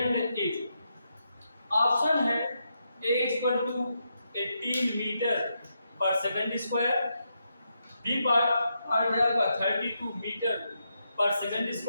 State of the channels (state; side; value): inverted; both; correlation -0.82